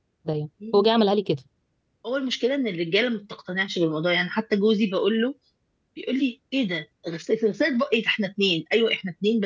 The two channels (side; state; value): both; identical; correlation 1.00